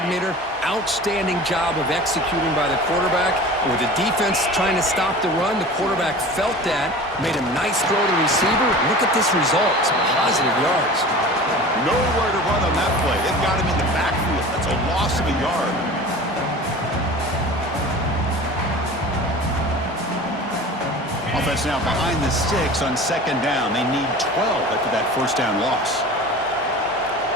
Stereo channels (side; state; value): both; normal; correlation 0.38